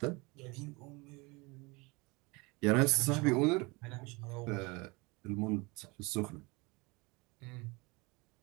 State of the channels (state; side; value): quieter; left; 26.1 dB